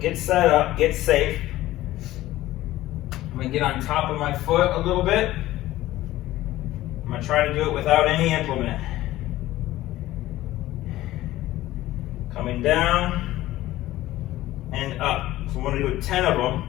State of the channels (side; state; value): right; quieter; 15.8 dB